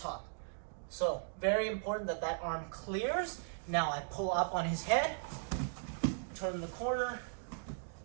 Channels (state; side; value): silent; left; digital silence